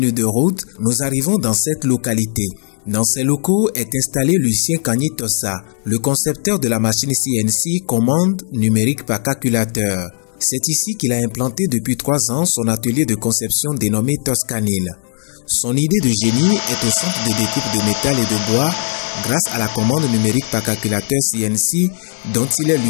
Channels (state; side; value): silent; right; 68 dB below the other